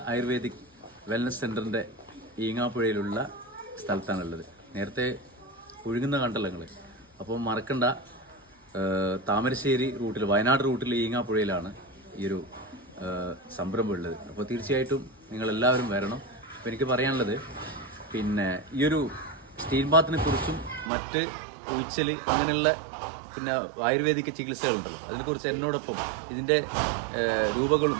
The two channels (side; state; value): left; drops out; at 20.9 s